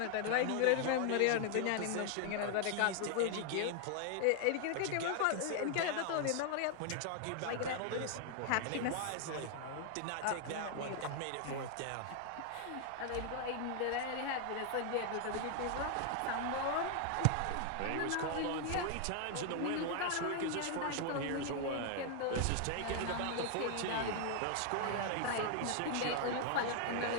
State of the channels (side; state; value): both; different; correlation 0.00